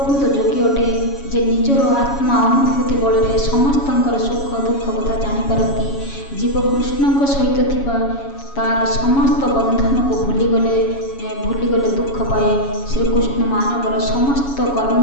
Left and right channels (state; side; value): late; right; 7.2 ms